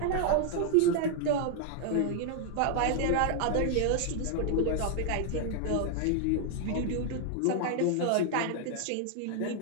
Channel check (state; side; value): different; both; correlation 0.00